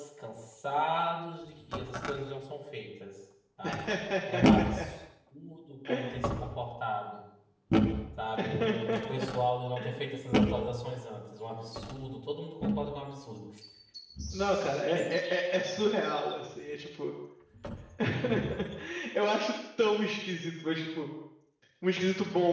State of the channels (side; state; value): both; identical; correlation 1.00